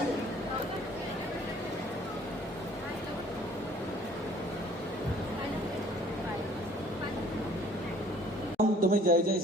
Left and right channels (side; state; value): both; normal; correlation 0.56